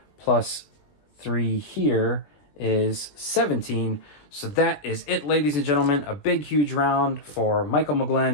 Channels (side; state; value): right; late; 20 ms